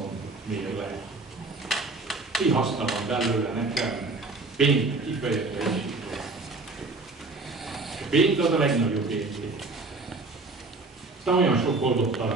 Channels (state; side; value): quieter; left; 3.4 dB